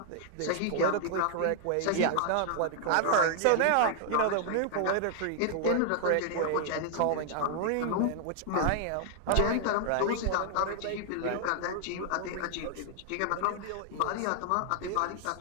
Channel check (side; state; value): both; different; correlation -0.01